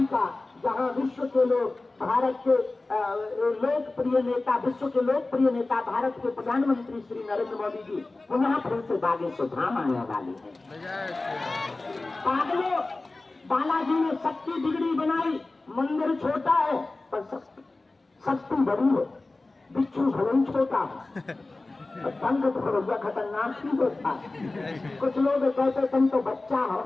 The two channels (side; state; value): right; quieter; 3.2 dB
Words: का, जहाँ विश्व के लोग, भारत के लोकप्रिय नेता, विश्व के लोकप्रिय नेता, भारत के प्रधानमंत्री श्री नरेंद्र मोदी जी पुनः फिर से बागेश्वर धाम आने वाले हैं। पागलों, बालाजी ने शक्ति बिगड़ी बनाई, मंदिर छोटा है पर शक्ति बड़ी है, बिच्छू भवन छोटा है, तंग भरोसा खतरनाक ही होता है। कुछ लोग कहते तुम तो बच्चा हो,